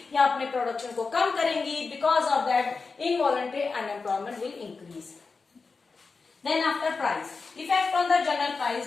या अपने प्रोडक्शन को कम करेंगी, because of that involuntary unemployment will increase. Then after price, effect on the general price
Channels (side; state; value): right; quieter; 4.4 dB